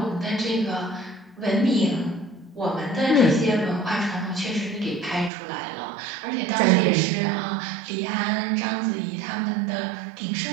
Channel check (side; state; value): left; drops out; at 5.3 s